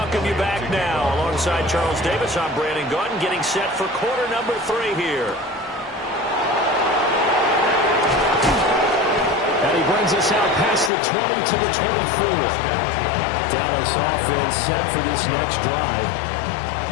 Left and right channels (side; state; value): right; drops out; at 10.9 s